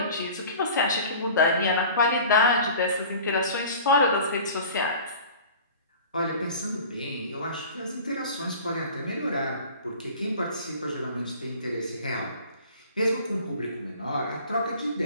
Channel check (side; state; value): both; inverted; correlation -0.43